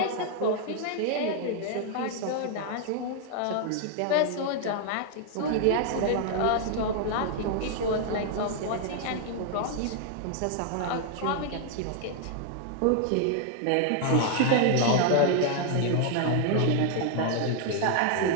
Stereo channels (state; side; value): different; both; correlation 0.00